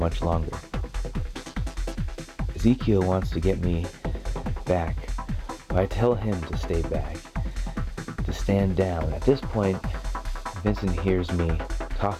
longer. Ezekiel wants to get me back, but I tell him to stay back, to stand down. At this point, Vincent hears me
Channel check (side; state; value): both; identical; correlation 1.00